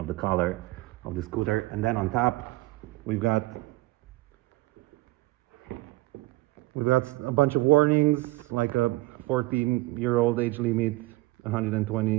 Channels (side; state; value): left; quieter; 20.2 dB